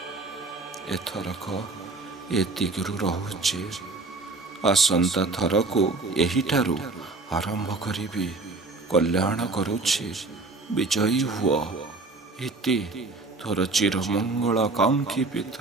ଏଥରକ ଏତିକିରୁ ରହୁଛି। ଆସନ୍ତା ଥରକୁ ଏହିଠାରୁ ଆରମ୍ଭ କରିବି। କଲ୍ୟାଣ କରୁଛି। ବିଜୟୀ ହୁଅ। ଇତି ତୋର ଚିରମଙ୍ଗଳ କାଙ୍କ୍ଷୀ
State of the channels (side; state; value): left; quieter; 3.5 dB